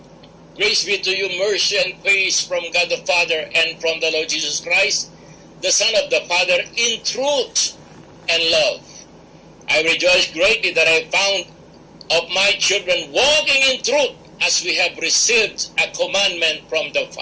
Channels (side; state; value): both; identical; correlation 1.00